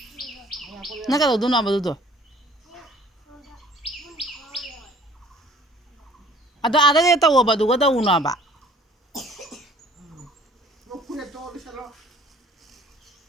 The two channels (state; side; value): normal; both; correlation 0.52